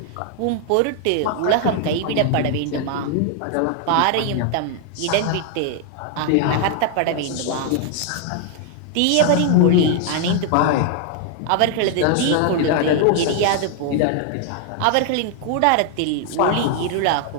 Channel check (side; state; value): both; different; correlation 0.00